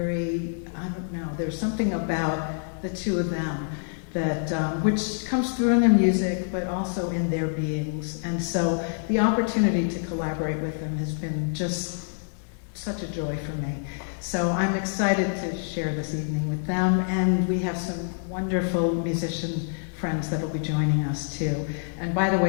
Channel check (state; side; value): silent; right; digital silence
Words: I don't know, there's something about the two of them that which comes through in their music, but also in their beings. And so the opportunity to collaborate with them has been just such a joy for me. So I'm excited to share this evening with them, and we have some wonderful musician friends that will be joining us too. And by the